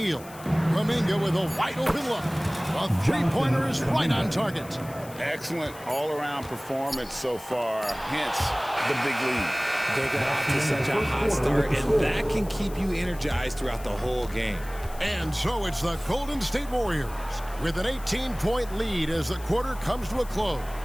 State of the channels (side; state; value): left; noise; hiss, 19 dB below the sound